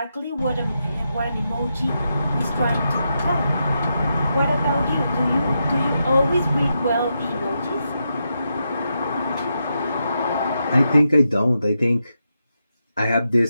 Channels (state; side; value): inverted; both; correlation -0.85